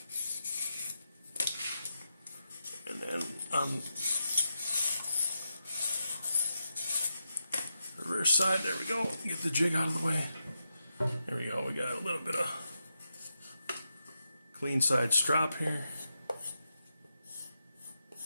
And then on the reverse side, there we go. Get the jig out of the way. There we go. We got a little bit of clean side strap here.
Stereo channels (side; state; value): both; inverted; correlation -0.87